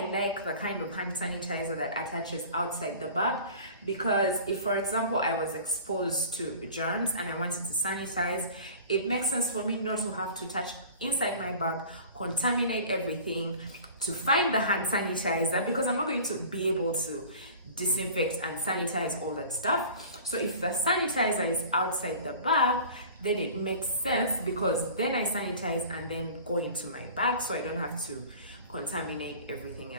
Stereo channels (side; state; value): both; inverted; correlation -0.42